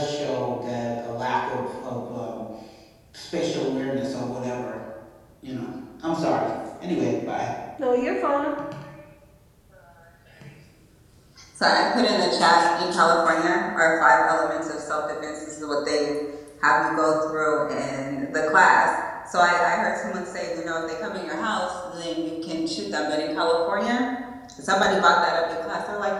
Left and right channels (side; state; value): both; identical; correlation 1.00